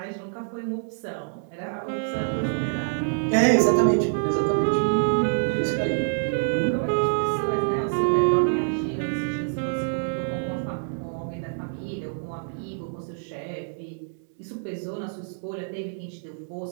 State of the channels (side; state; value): left; silent; digital silence